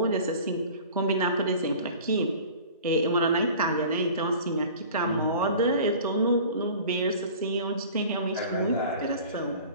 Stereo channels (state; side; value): inverted; both; correlation -0.43